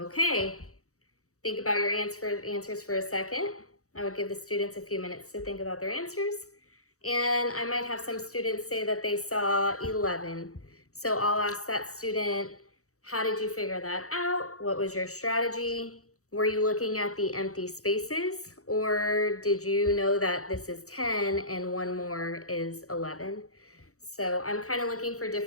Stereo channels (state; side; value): late; right; 0.65 ms